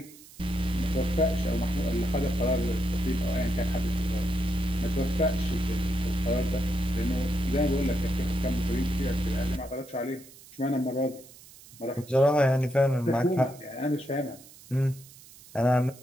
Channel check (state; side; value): noise; right; hiss, 21 dB below the sound